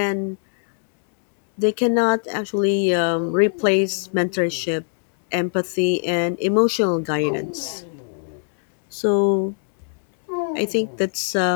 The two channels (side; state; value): right; silent; 65 dB below the other